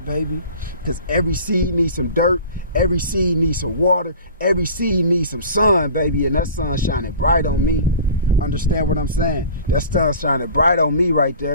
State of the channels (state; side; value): inverted; both; correlation -0.41